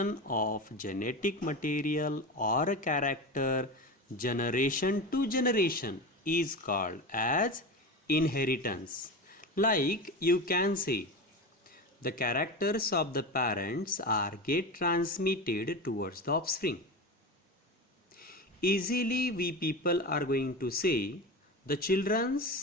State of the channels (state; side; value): normal; both; correlation 0.24